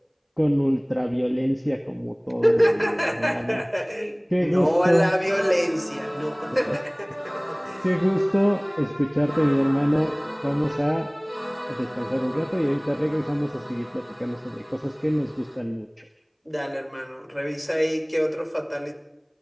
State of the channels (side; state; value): both; identical; correlation 1.00